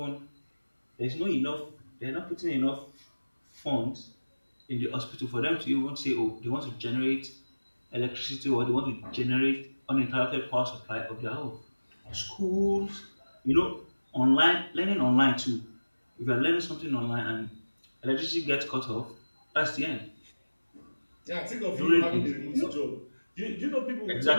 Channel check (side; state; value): both; inverted; correlation -1.00